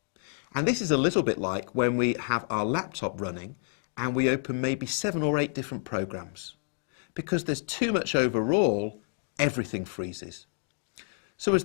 And this is a little bit like when we have our laptop running and we open maybe 7 or 8 different programs. Because there's too much overall, everything freezes. So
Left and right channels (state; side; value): silent; right; 58 dB below the other